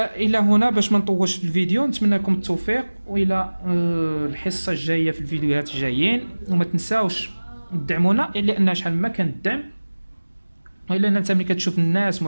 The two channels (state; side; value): inverted; both; correlation -1.00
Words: الى هنا باش ما نطولش في الفيديو، نتمنى لكم التوفيق والى الحصه الجايه في الفيديوهات الجايين. وما تنساوش تدعمونا لان شحال ما كان الدعم الا انت ملي كتشوف الناس